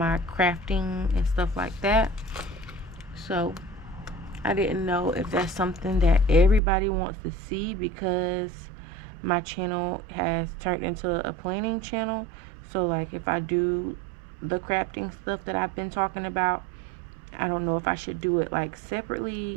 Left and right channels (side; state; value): left; drops out; at 6.6 s